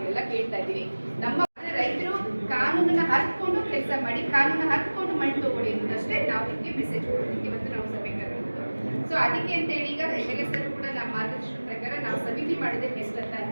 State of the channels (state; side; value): inverted; both; correlation -1.00